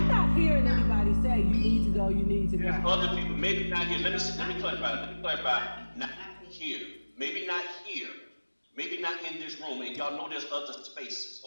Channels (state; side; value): inverted; both; correlation -1.00